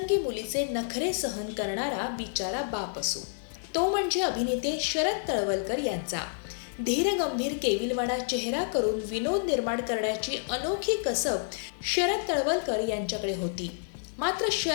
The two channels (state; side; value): silent; right; 58 dB below the other